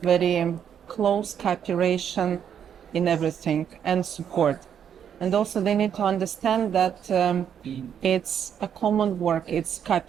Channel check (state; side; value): quieter; left; 8.6 dB